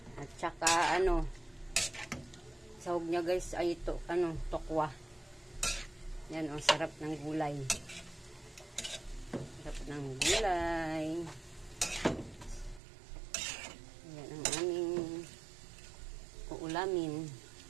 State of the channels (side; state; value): left; drops out; at 12.8 s